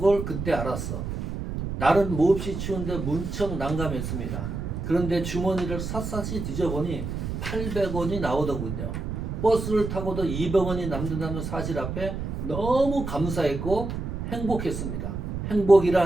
걸 그때 알았어. 날은 몹시 추운데 문척 난감했습니다. 그런데 주머니를 샅샅이 뒤져보니 800원이 나오더군요. 버스를 타고도 200원이 남는다는 사실 앞에 너무 감사했고 행복했습니다.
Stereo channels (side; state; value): right; noise; rumble, 5 dB below the sound